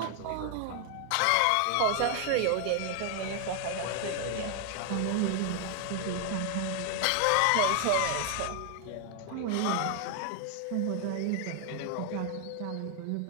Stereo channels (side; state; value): both; different; correlation 0.00